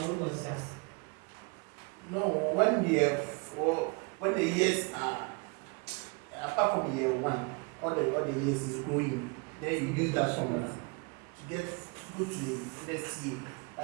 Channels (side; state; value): left; quieter; 31.5 dB